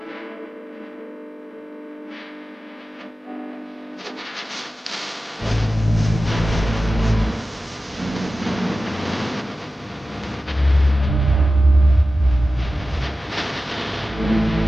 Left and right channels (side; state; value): both; normal; correlation 0.94